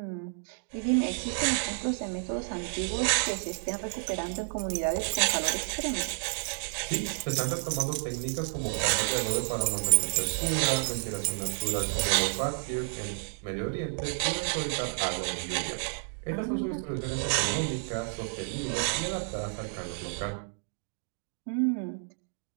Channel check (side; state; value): left; silent; digital silence